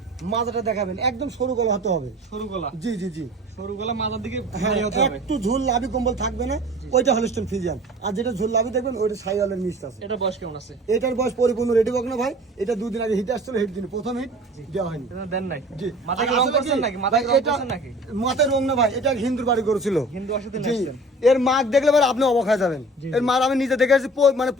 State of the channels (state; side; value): normal; both; correlation 0.44